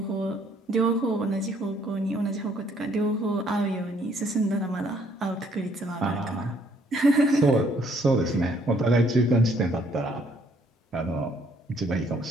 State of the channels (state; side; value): normal; both; correlation 0.65